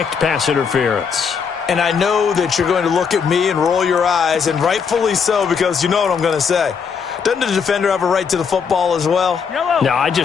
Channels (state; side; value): quieter; right; 6.2 dB